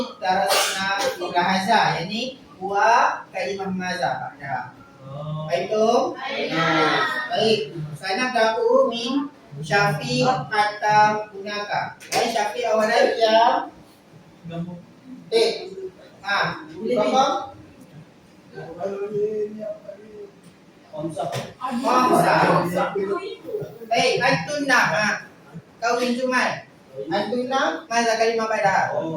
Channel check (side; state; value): both; identical; correlation 1.00